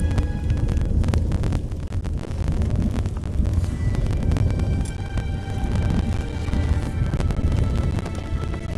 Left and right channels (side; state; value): both; identical; correlation 1.00